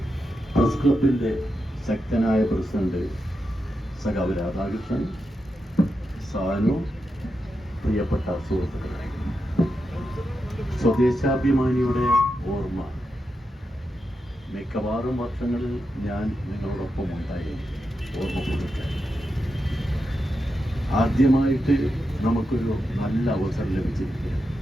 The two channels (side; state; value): both; normal; correlation 0.87